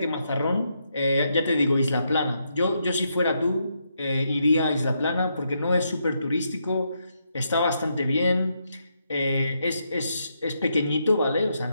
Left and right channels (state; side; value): inverted; both; correlation -0.80